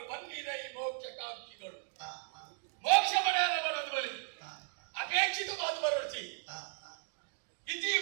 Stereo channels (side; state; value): left; silent; 54 dB below the other